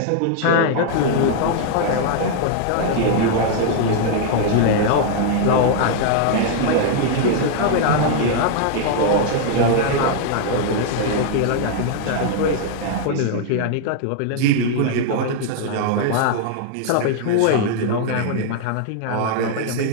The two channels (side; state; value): both; different; correlation 0.00